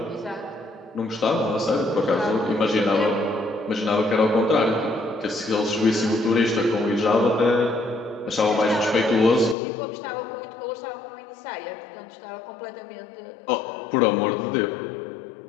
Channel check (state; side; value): drops out; right; at 9.6 s